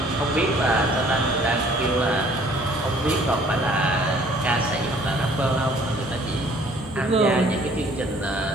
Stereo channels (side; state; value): both; normal; correlation 0.57